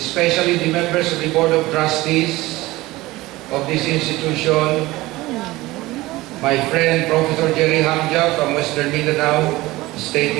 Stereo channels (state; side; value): quieter; left; 19.1 dB